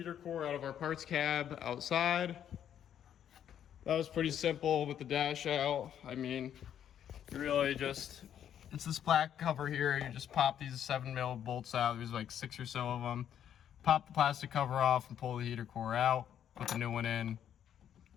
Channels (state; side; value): quieter; right; 9.7 dB